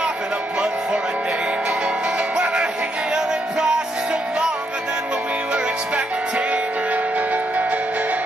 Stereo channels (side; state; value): both; normal; correlation 0.77